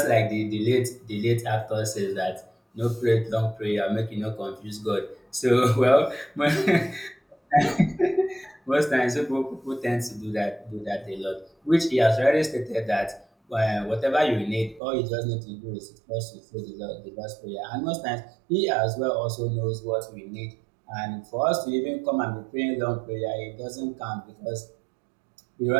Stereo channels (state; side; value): drops out; left; at 14.8 s